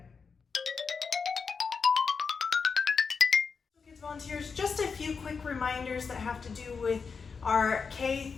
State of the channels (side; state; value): right; quieter; 5.4 dB